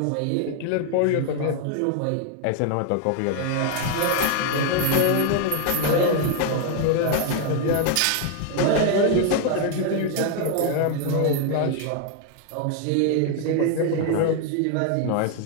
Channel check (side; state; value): both; different; correlation 0.00